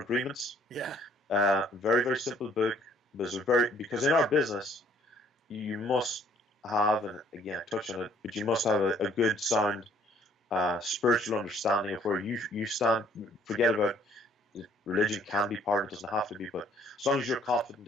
Agreements. Yeah. Very, very simple book, because in our business, you must have, and again, touch on it, but you must have a good, sound, spiritual understanding of where you stand. Forget about religion, can be part, it doesn't have to be, but as long as you're confident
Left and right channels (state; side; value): normal; both; correlation 0.60